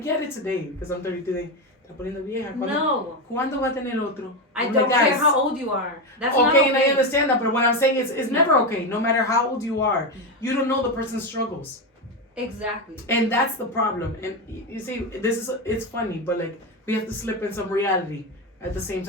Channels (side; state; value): both; normal; correlation 0.13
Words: it today because I'm 33. No. ¿Cuándo va a tener otro? I I'm don't like, care guys, how old you are. That's okay, not okay. and I understand that, but what I'm saying is it's never okay, no matter how old you are. You don't know the person's struggles. Exactly. And that's the problem. And you see, it's funny, but like, we have to slip in some reality at the same